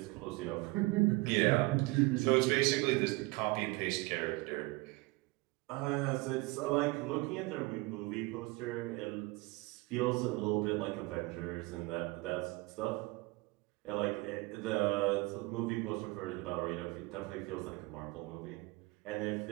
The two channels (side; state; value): left; quieter; 23.7 dB